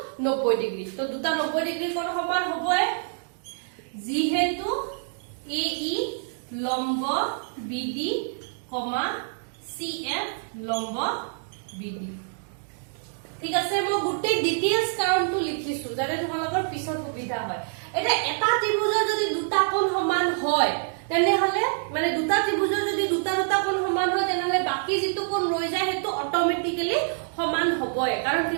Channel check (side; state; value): left; silent; digital silence